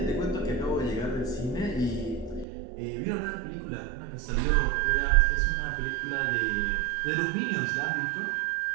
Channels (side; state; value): left; drops out; at 2.5 s